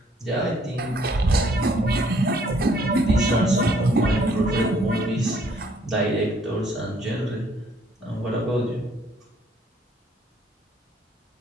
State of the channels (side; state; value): both; normal; correlation 0.64